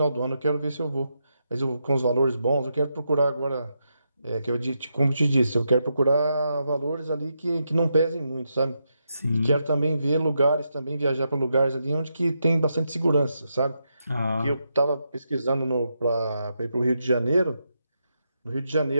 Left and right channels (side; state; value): both; inverted; correlation -0.83